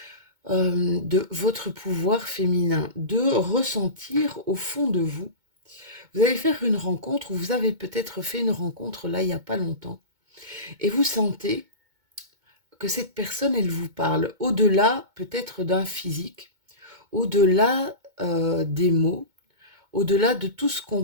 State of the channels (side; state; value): left; late; 2.2 ms